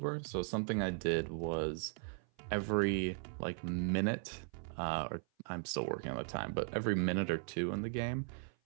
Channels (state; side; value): silent; left; 53 dB below the other